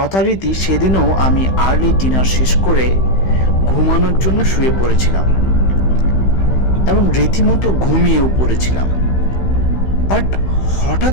সেদিনও আমি আর্লি ডিনার শেষ করে ঘুমানোর জন্য শুয়ে পড়েছিলাম এবং রীতিমতো ঘুমিয়েও পড়েছিলাম। বাট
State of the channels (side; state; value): right; late; 15 ms